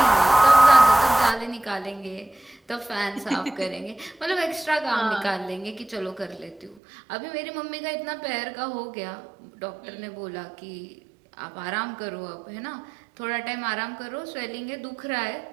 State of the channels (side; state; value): left; drops out; at 6.8 s